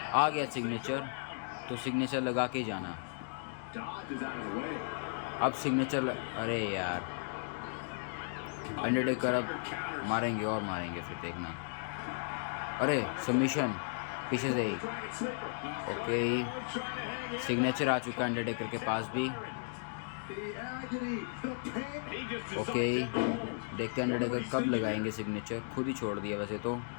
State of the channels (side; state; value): right; silent; digital silence